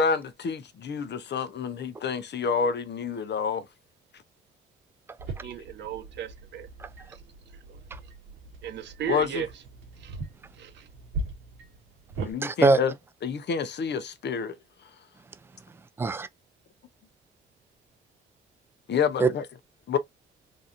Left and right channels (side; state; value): both; normal; correlation 0.37